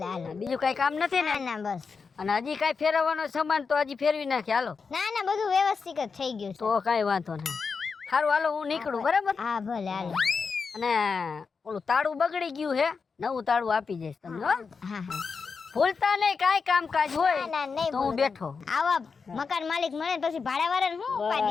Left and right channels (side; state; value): right; quieter; 5.2 dB